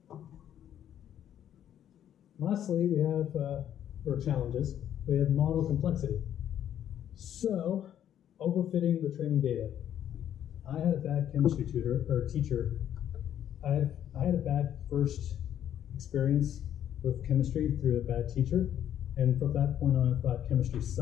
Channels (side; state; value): right; quieter; 10.4 dB